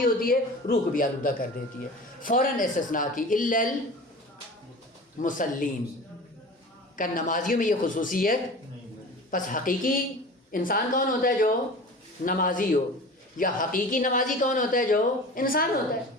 ہوتی ہے روح کو بھی آلودہ کر دیتی ہے. فوراً استثناء کی الا المصلین کا نمازیوں میں یہ خصوصیت. پس حقیقی انسان کون ہوتا ہے؟ جو نمازی ہو. یا حقیقی نمازی کون ہوتا ہے؟ جو انسان ہوتا ہے.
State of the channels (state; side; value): normal; both; correlation 0.37